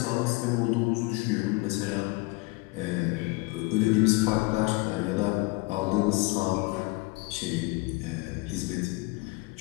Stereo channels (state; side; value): quieter; right; 24.8 dB